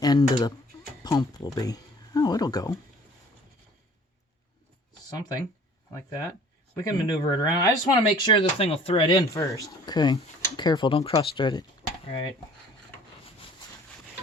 end of the pump will be. Oh, it'll go. Something like that. We can maneuver it around. I just want to make sure the thing will thread in first. Okay. Careful. Don't cross-thread it. All right.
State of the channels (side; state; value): both; normal; correlation 0.51